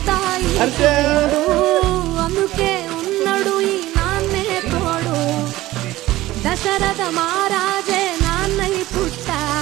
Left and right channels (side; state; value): left; quieter; 16.8 dB